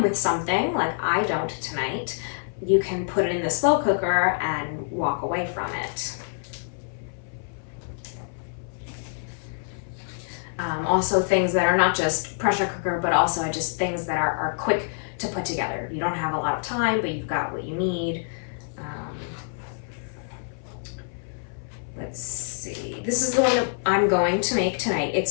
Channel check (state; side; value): silent; right; 58 dB below the other